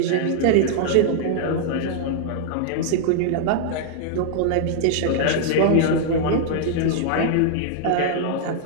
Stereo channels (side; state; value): both; different; correlation -0.01